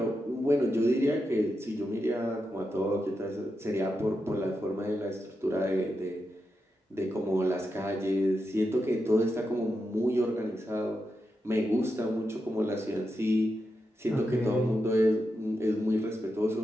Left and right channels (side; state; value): both; normal; correlation 0.87